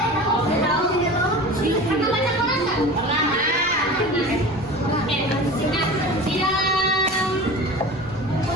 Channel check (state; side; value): noise; left; rumble, 20 dB below the sound